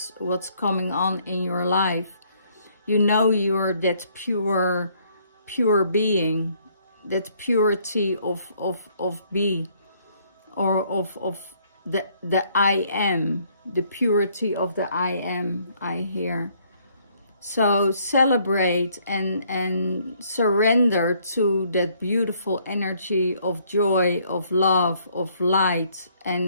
coming on in your life. you know you're that pure being, that purity of be, or of the I am, the purity of the I am, I hear. So celebrate and surrender to that beautiful energy of joy, of love, of light,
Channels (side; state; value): both; inverted; correlation -0.66